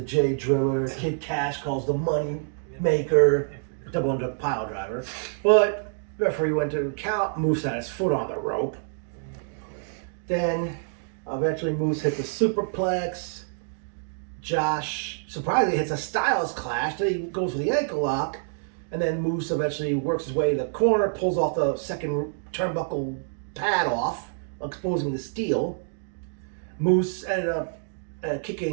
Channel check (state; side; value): silent; left; digital silence